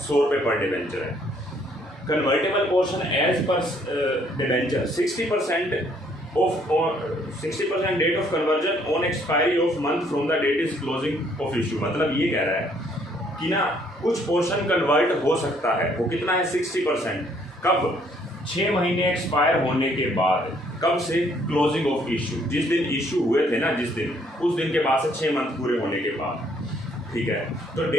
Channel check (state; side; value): normal; both; correlation 0.65